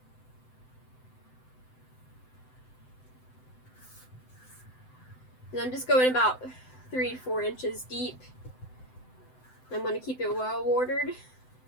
And I'm just going about 3 to 4 inches deep. I'm going to keep it well watered,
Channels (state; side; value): late; right; 7.9 ms